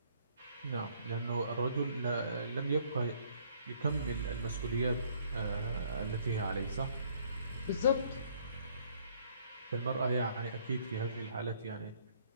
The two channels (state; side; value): inverted; both; correlation -0.63